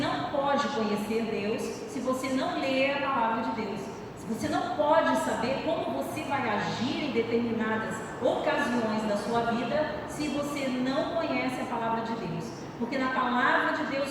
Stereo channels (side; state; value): both; identical; correlation 1.00